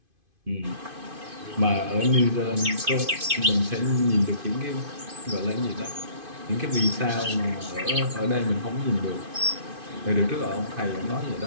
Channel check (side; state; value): left; late; 2.5 ms